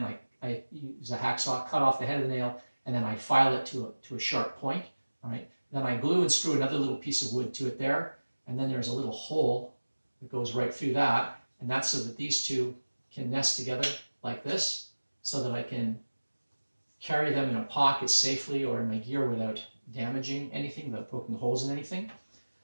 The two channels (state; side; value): inverted; both; correlation -1.00